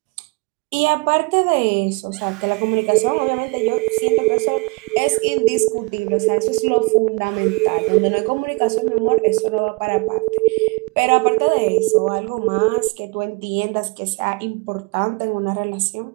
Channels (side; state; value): left; quieter; 28.9 dB